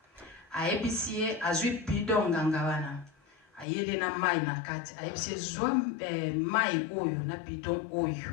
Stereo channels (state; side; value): drops out; right; at 3.7 s